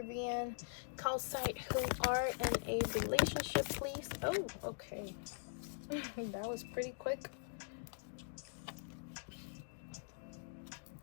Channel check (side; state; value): right; silent; digital silence